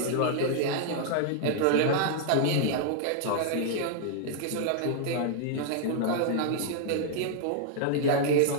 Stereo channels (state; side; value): different; both; correlation -0.01